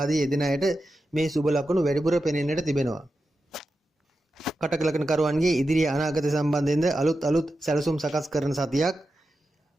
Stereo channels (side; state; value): both; normal; correlation 0.90